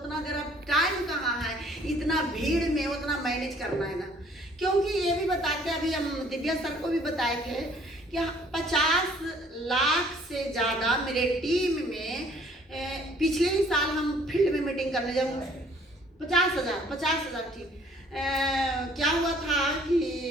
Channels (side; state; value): both; normal; correlation 0.58